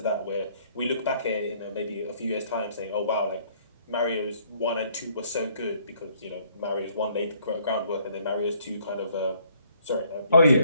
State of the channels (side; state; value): both; inverted; correlation -0.64